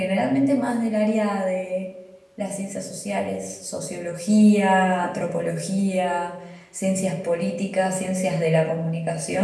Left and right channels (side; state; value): both; identical; correlation 1.00